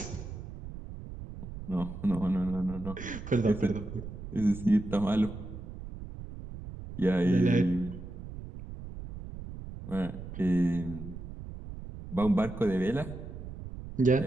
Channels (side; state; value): right; noise; rumble, 11 dB below the sound